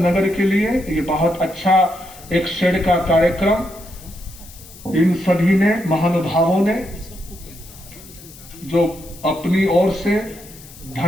के लिए ये बहुत अच्छा एक शेड का कार्यक्रम इन सभी ने, महानुभावों ने, जो अपनी ओर से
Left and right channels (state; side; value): noise; left; hiss, 19 dB below the sound